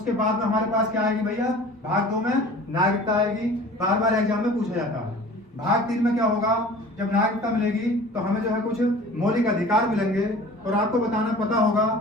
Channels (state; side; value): normal; both; correlation 0.44